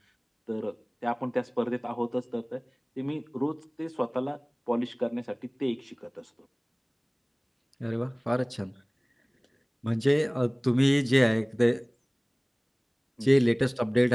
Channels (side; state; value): both; identical; correlation 1.00